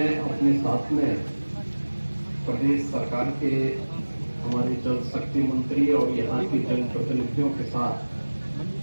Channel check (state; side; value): inverted; both; correlation -1.00